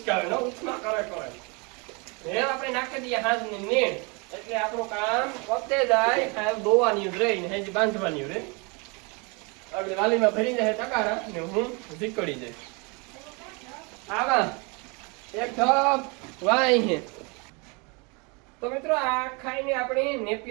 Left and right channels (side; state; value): left; quieter; 30.6 dB